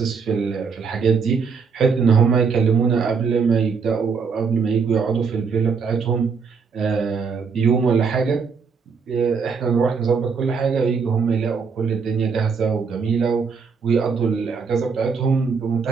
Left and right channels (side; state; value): left; quieter; 5.5 dB